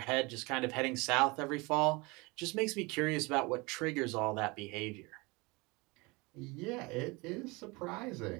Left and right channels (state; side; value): quieter; left; 25.5 dB